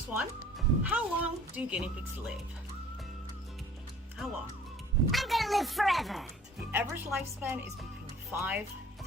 one, how long do guinea pigs live? How long? I'm gonna live forever. The average lifespan is between 5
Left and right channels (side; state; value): both; normal; correlation 0.51